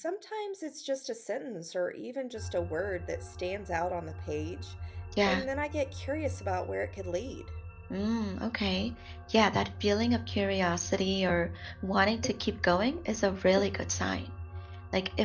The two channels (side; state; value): both; identical; correlation 1.00